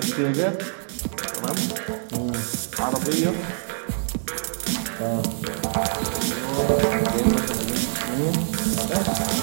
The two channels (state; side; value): silent; left; digital silence